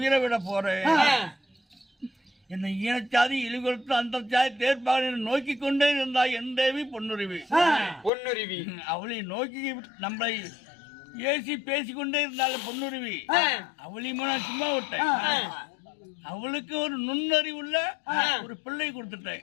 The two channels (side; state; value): right; drops out; at 8.1 s